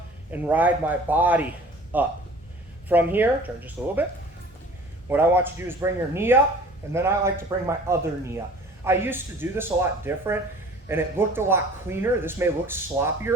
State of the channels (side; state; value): both; normal; correlation 0.47